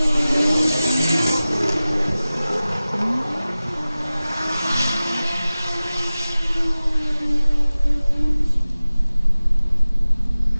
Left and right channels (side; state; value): both; inverted; correlation -0.97